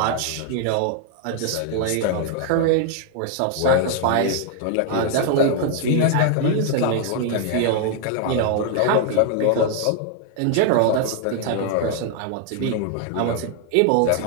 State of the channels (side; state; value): both; different; correlation 0.00